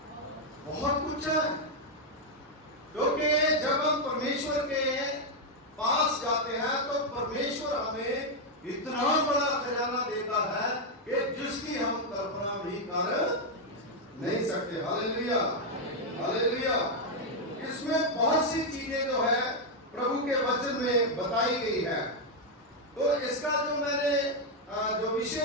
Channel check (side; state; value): both; normal; correlation 0.01